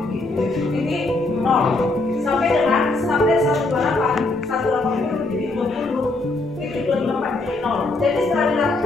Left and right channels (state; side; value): quieter; right; 3.1 dB